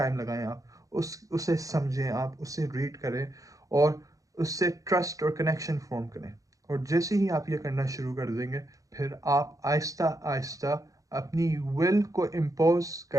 लगाएं। आप उसे समझें, आप उसे रीड करें और उससे ट्रस्ट और कनेक्शन फॉर्म करें। और जैसे ही आप ये करना शुरू कर देंगे, फिर आप आहिस्ता आहिस्ता अपनी विल को इम्पोज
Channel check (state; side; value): late; left; 0.17 ms